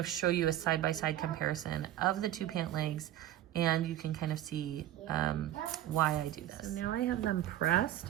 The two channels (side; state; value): left; quieter; 12.7 dB